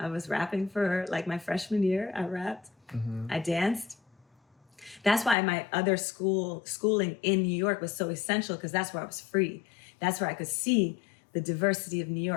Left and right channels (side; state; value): right; drops out; at 5.4 s